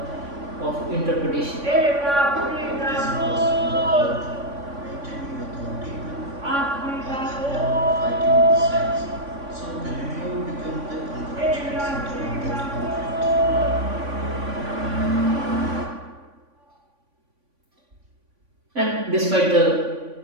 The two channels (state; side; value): late; left; 3.5 ms